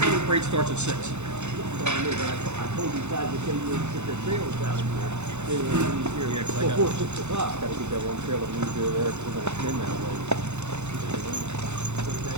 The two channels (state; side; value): late; left; 0.83 ms